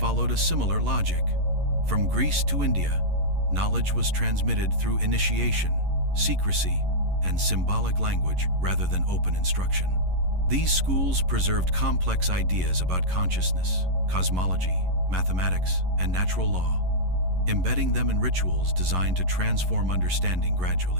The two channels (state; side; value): late; left; 11 ms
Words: a similar logic. From Greece to India, knowledge was transmitted through initiation, secrecy, and symbolic language rather than open instruction. These schools preserved complex ideas about consciousness, cosmology, mathematics, and natural law, embedding them in rituals designed to transform understanding